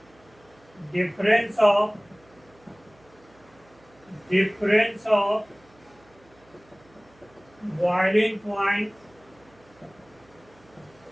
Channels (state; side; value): noise; right; hum, 29 dB below the sound